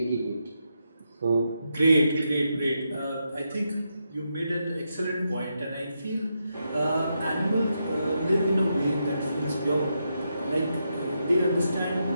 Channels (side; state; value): both; inverted; correlation -0.83